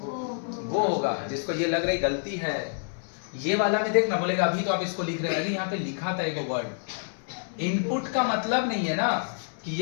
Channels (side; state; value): right; silent; 60 dB below the other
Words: वो होगा। जिसको ये लग रही गलती है ये वाला में देखना बोलेगा अभी तो आप इसको लिख रहे हैं, यहाँ पे लिखा था एक वर्ड। इनपुट का मतलब नहीं है ना कि